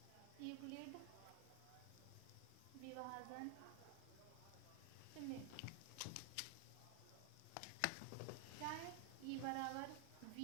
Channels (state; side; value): different; both; correlation 0.00